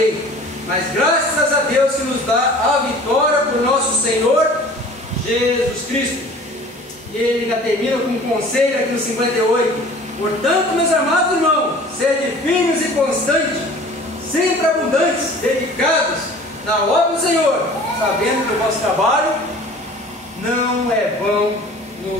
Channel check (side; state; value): both; normal; correlation 0.45